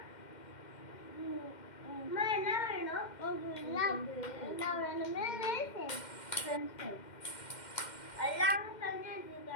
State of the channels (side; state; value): right; late; 2.1 ms